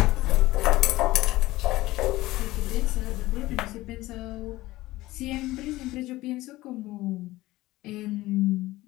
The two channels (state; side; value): quieter; right; 17.9 dB